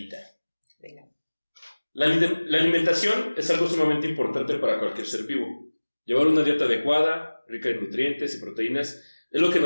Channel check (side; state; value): both; inverted; correlation -1.00